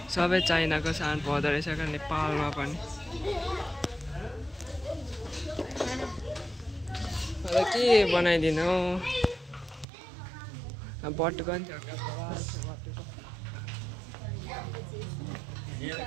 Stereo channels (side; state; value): left; drops out; at 9.9 s